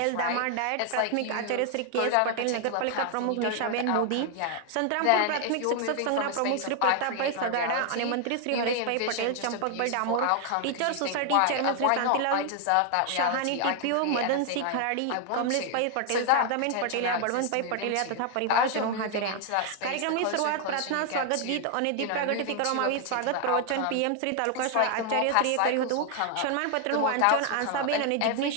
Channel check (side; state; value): both; different; correlation 0.00